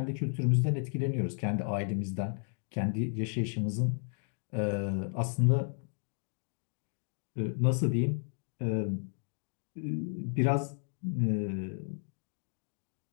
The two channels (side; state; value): right; silent; 55 dB below the other